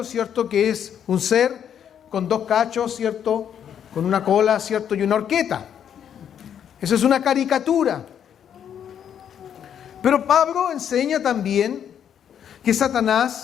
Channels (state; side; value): quieter; right; 8.9 dB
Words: ¿cierto? Que es un ser con dos cachos, ¿cierto? Con una cola, ¿cierto? Y una horqueta. Eso es una caricatura. Pero Pablo enseña también que